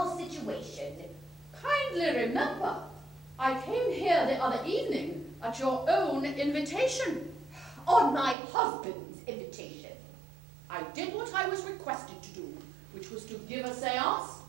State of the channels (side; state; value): left; drops out; at 8.3 s